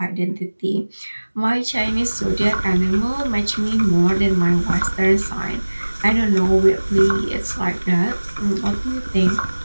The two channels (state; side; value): inverted; both; correlation -1.00